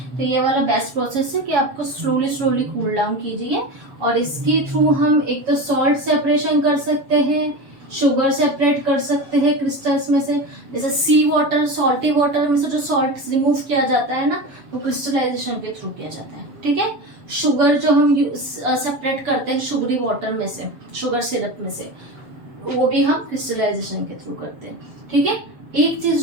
तो ये वाला बेस्ट प्रोसेस है कि आपको स्लोली स्लोली कूल डाउन कीजिए। और इसके थ्रू हम एक तो सॉल्ट सेपरेशन कर सकते हैं, शुगर सेपरेट कर सकते हैं क्रिस्टल्स में से। जैसे सी वाटर, सॉल्टी वाटर में से जो सॉल्ट रिमूव किया जाता है ना, वो क्रिस्टलाइजेशन के थ्रू किया जाता है। ठीक है, शुगर जो हम सेपरेट करते हैं शुगरी वाटर में से, शुगर सिरप में से, वो भी हम क्रिस्टलाइजेशन के थ्रू करते हैं। ठीक है, एक चीज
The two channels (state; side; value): late; left; 7.4 ms